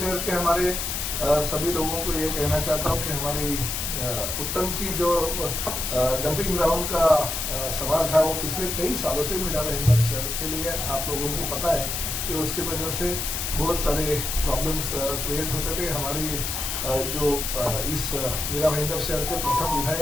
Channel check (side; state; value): left; noise; hiss, 2 dB below the sound